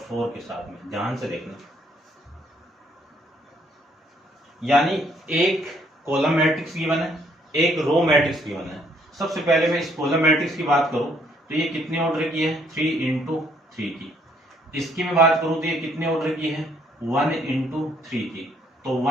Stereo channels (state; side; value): normal; both; correlation 0.66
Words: 4 के साथ में, ध्यान से देखना। यानी एक कॉलम मैट्रिक्स गिवन है, एक रो मैट्रिक्स गिवन है। सबसे पहले मैं इस कॉलम मैट्रिक्स की बात करूं तो ये कितने ऑर्डर की है 3 इंटू 3 की। इसकी मैं बात करूं तो ये कितने ऑर्डर की है 1 इंटू 3 की। तो